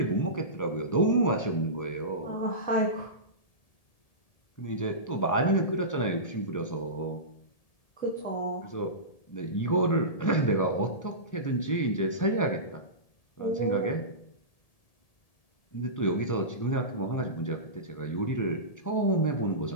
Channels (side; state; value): right; late; 1.7 ms